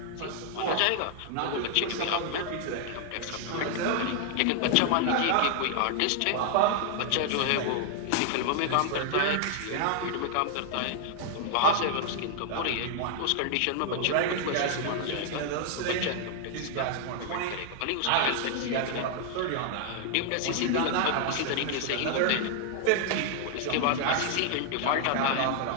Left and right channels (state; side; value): different; both; correlation 0.00